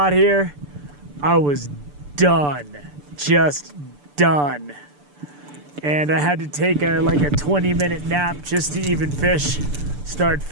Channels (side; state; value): left; late; 6.9 ms